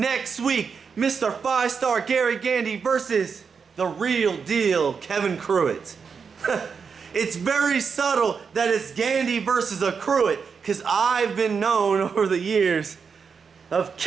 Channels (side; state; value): left; quieter; 5.9 dB